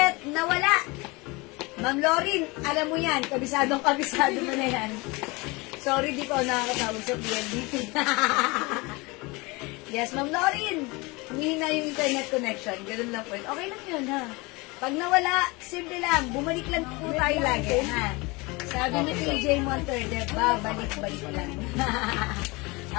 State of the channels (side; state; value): right; quieter; 25.2 dB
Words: nawala? Ma'am Lauren, alam mo yan, kabisado mo na yan. Sorry, di ko nakakatawag sa PNDT. Yes, Ma'am Lauren. Humihina yung internet connection. Ganun lang po. Okay lang yun, ha? Pag nawala, simple lang. Bumalik lang po tayo lagi, ha? Sabi ni PJ Monterde, balik-balik lang.